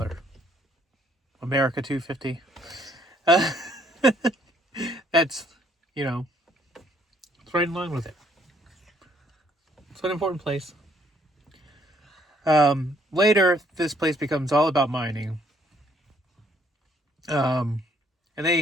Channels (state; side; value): normal; both; correlation 0.66